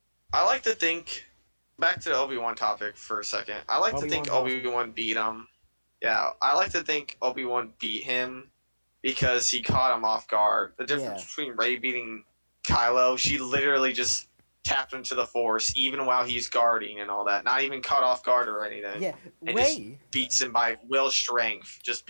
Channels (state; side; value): inverted; both; correlation -1.00